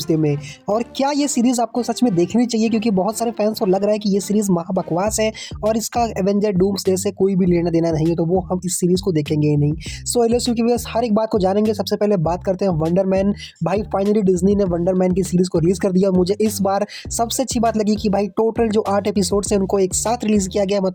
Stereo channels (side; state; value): both; identical; correlation 1.00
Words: में? और क्या ये सीरीज़ आपको सच में देखनी चाहिए? क्योंकि बहुत सारे फैंस को लग रहा है कि ये सीरीज़ महा बकवास है और इसका एवेंजर डूम्सडे से कोई भी लेना देना नहीं है, तो वो हम इस सीरीज़ को देखेंगे ही नहीं। सो एलएसयू की व्यूअर्स हर एक बात को जानेंगे। सबसे पहले बात करते हैं वंडर मैन। भाई फाइनली डिज्नी ने वंडर मैन की सीरीज़ को रिलीज़ कर दिया। मुझे इस बार सबसे अच्छी बात लगी कि भाई टोटल जो 8 एपिसोड्स हैं उनको एक साथ रिलीज़ किया गया।